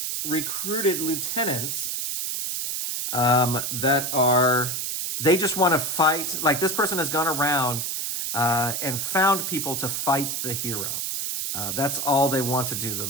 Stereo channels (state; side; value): noise; right; hiss, 2 dB below the sound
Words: recruited lieutenants they just want to fight. This person has gone around and found people to fight the hero. That's all they want to do. The